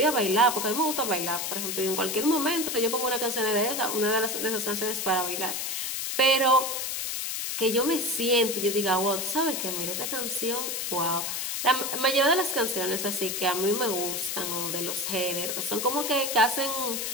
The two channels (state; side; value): noise; left; hiss, 2 dB below the sound